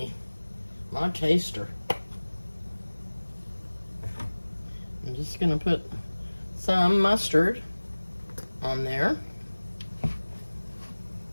My taster. I'm just gonna put some mustard on there.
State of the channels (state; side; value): inverted; both; correlation -1.00